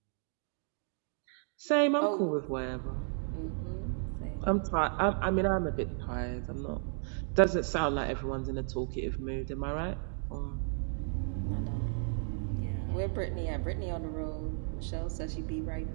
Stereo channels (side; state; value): left; silent; 55 dB below the other